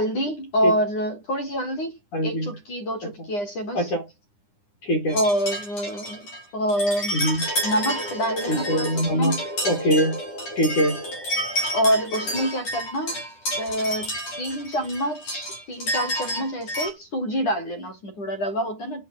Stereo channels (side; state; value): right; late; 9.9 ms